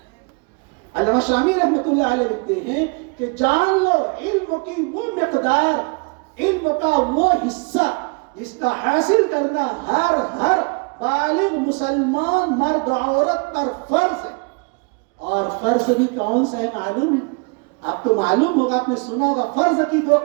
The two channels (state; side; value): quieter; left; 33.1 dB